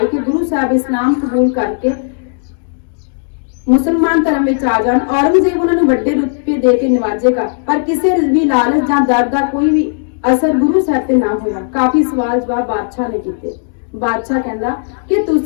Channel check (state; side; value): silent; right; digital silence